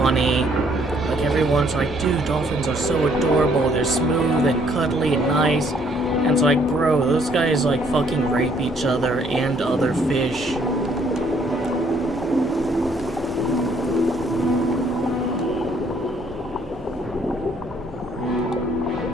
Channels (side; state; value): both; normal; correlation 0.65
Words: Like, everyone's like, dude, dolphins are so adorable, they're smooth and cuddly and nice. And it's like, bro, those guys, like, fucking rape each other and other fish.